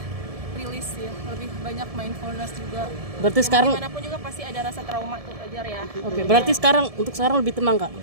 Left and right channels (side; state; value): left; late; 1.7 ms